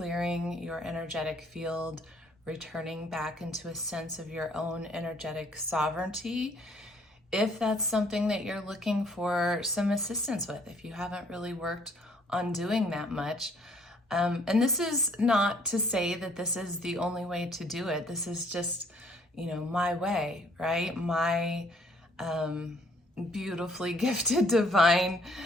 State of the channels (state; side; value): normal; both; correlation 0.62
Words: your energetic field, returning back into a sense of your own energetic sovereignty, if that's something that you're looking for some assistance with, if you haven't really worked on doing that much. And this is not to say that this is the only way to do it. This is just, my way, right? My beautifully gifted divine,